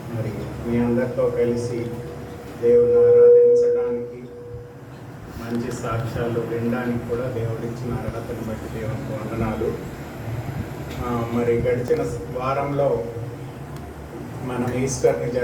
మరి మీ అందరితో కలిసి దేవుని ఆరాధించడానికి మంచి సాక్ష్యాలు వినడానికి కూడా దేవుడిచ్చిన అర్హతను బట్టి దేవునికి వందనాలు. మరి గడిచిన వారంలో మనం ఈస్టర్ని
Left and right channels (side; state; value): both; identical; correlation 1.00